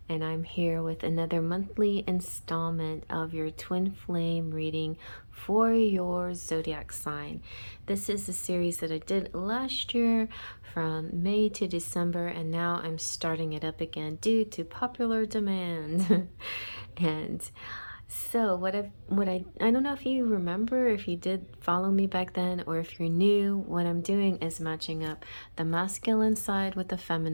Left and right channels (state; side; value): inverted; both; correlation -1.00